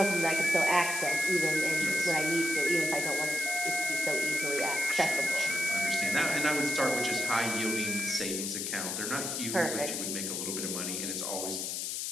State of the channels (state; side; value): noise; left; hiss, 2 dB below the sound